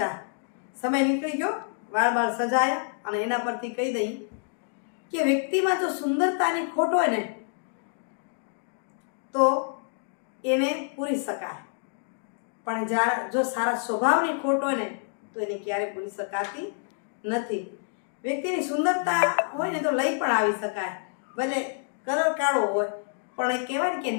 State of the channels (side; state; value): right; silent; digital silence